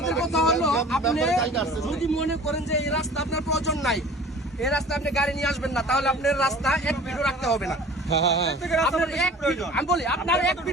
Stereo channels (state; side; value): normal; both; correlation 0.44